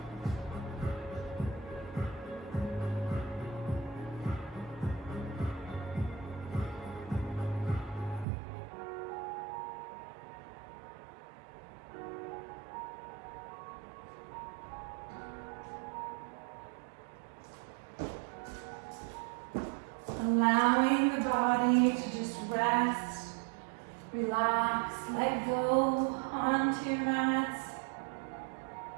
Allowing the body to just rest, relax, let go onto your mats.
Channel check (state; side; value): drops out; left; at 8.2 s